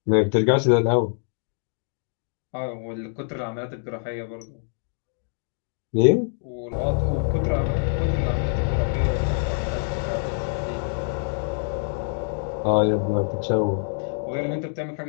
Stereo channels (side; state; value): right; silent; digital silence